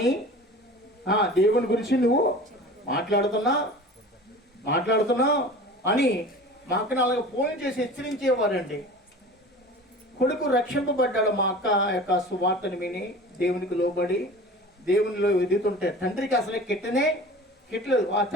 దేవుని గురించి నువ్వు మాట్లాడుతున్నావు అని మా అక్కను అలాగే ఫోన్ చేసి హెచ్చరించేవారండి. కొడుకు రక్షింపబడ్డాడు. మా అక్క యొక్క సువార్తని విని దేవునికి లోబడి దేవునిలో ఎదుగుతుంటే తండ్రికి అసలే కిట్టలేదు. ఆ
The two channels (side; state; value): both; normal; correlation 0.39